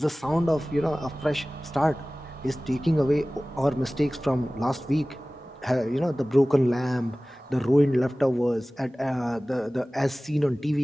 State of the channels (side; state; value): both; normal; correlation 0.98